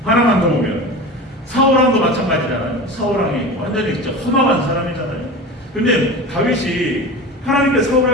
하나만 더 보면 사울왕도 마찬가지잖아요. 사울왕이 완전히 진짜 험악한 사람이잖아요. 근데 다윗이 하나님께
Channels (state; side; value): normal; both; correlation 0.31